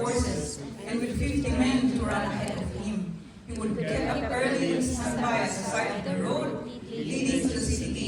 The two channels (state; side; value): identical; both; correlation 1.00